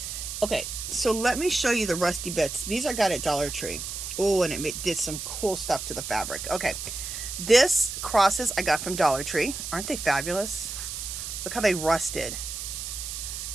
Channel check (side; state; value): right; noise; hiss, 6 dB below the sound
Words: Okay, so let me show you the rusty bits. These I got at Dollar Tree. Oh, and it did some cool stuff to the fabric. Okay, this crosses I got from Dollar Tree. Aren't they fabulous? Look how they rusted.